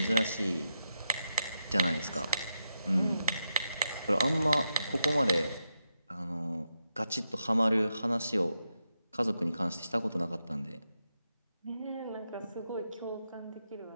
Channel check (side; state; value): both; inverted; correlation -0.86